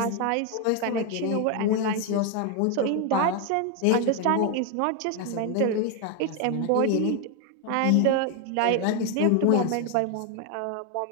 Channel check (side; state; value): both; different; correlation 0.01